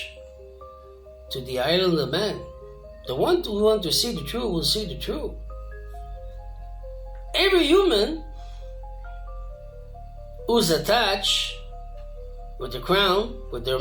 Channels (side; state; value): both; identical; correlation 1.00